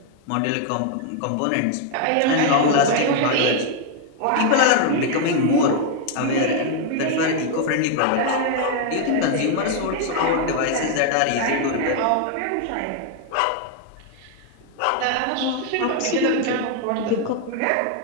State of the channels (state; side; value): different; both; correlation 0.00